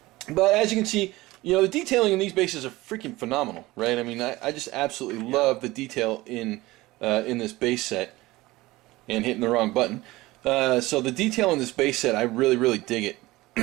But as you can see, you know, the detailing in these bases are freaking phenomenal, right? I mean, I just absolutely love the detail in this base set. And hitting the wrong button. So the detail in this base set, I really, really dig it.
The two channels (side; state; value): left; quieter; 19.3 dB